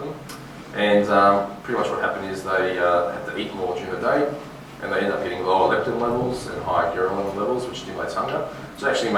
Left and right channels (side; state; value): both; identical; correlation 1.00